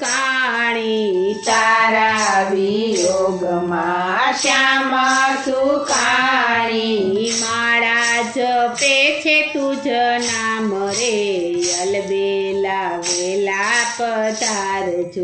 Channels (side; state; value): both; identical; correlation 1.00